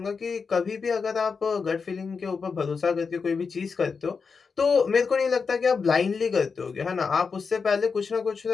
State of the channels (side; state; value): right; quieter; 5.3 dB